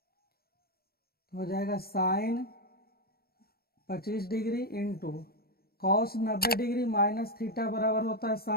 तो हो जाएगा sine 25 degree into cos 90 degree minus theta बराबर होता है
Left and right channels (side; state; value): right; late; 0.44 ms